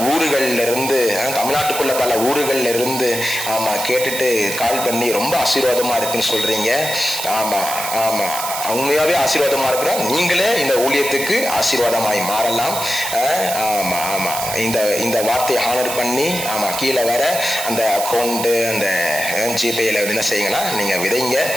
ஊர்கள்ல இருந்து, தமிழ்நாட்டுக்குள்ள பல ஊர்கள்ல இருந்து கேட்டுட்டு கால் பண்ணி ரொம்ப ஆசீர்வாதமா இருக்குன்னு சொல்றீங்க. உண்மையாவே ஆசீர்வாதமா இருக்கிறோம். நீங்களே இந்த ஊழியத்துக்கு ஆசீர்வாதமாய் மாறலாம். இந்த வார்த்தையை ஹானர் பண்ணி கீழே வர அந்த அக்கௌண்ட், அந்த ஜிபேல என்ன செய்யுங்கன்னா நீங்க விதைங்க.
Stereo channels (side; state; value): right; noise; hiss, 5 dB below the sound